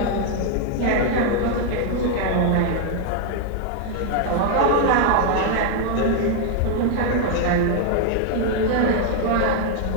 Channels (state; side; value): different; both; correlation 0.00